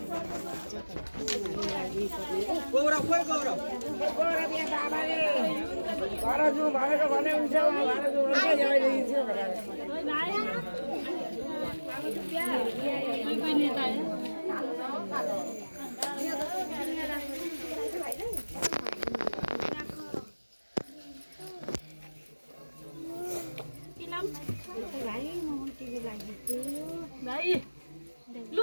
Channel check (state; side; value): inverted; both; correlation -1.00